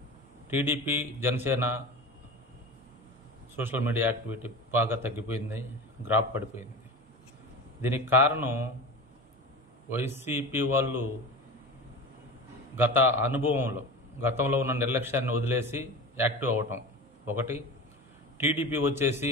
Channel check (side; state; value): both; normal; correlation 0.30